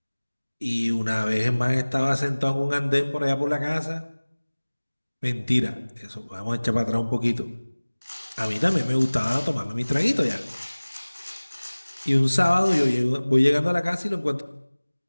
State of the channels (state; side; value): inverted; both; correlation -1.00